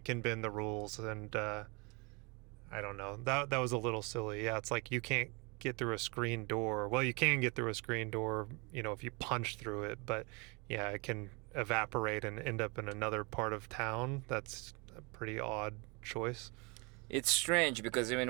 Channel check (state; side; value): quieter; left; 29.7 dB